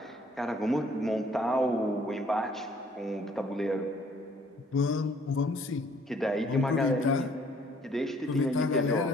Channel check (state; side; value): normal; both; correlation 0.61